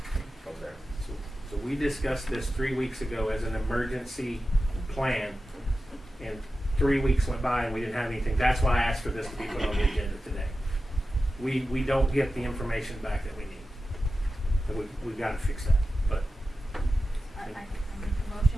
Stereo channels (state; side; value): normal; both; correlation 0.93